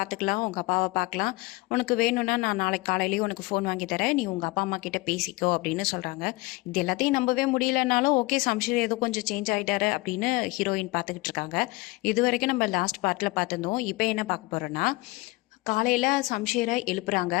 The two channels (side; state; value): right; quieter; 22.8 dB